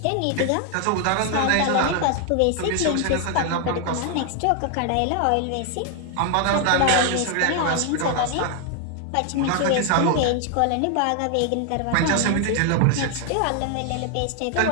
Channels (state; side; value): different; both; correlation 0.00